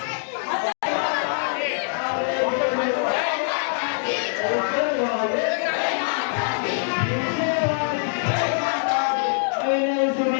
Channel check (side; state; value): right; silent; digital silence